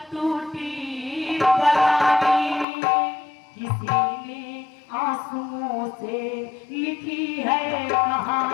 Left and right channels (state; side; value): drops out; right; at 2.7 s